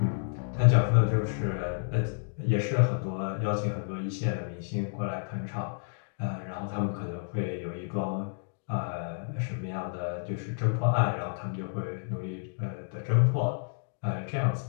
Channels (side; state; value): right; silent; digital silence